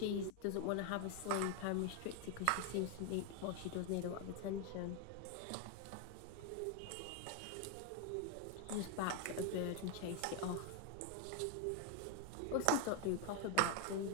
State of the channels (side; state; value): both; different; correlation 0.01